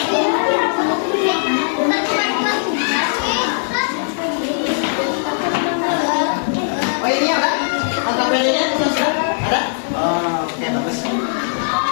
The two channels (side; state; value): right; silent; digital silence